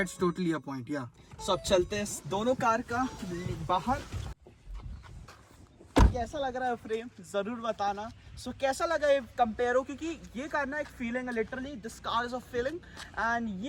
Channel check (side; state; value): both; identical; correlation 1.00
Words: totally a point, yeah. सो अब चलते हैं दोनों car का बाहर। कैसा लग रहा है फ्रेम जरूर बताना। सो कैसा लगा ये कंपेयर हो, क्योंकि ये कार ना एक फीलिंग है, literally this car is a feeling. And